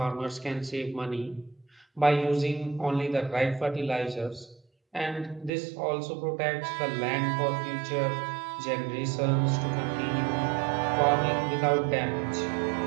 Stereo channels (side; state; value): left; drops out; at 5.5 s